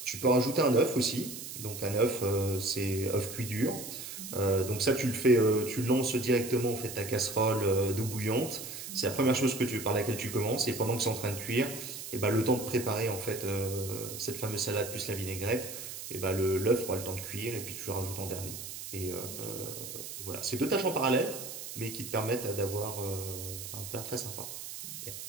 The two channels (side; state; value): right; noise; hiss, 9 dB below the sound